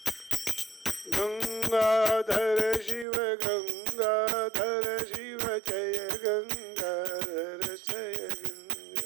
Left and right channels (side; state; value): left; drops out; at 3.1 s